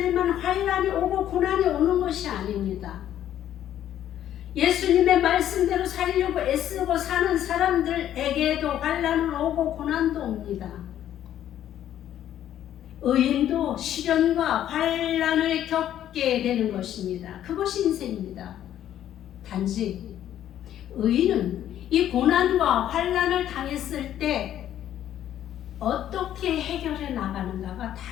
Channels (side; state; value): right; quieter; 11.3 dB